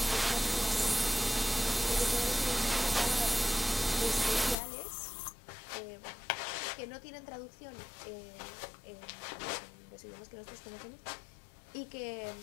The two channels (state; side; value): drops out; right; at 4.5 s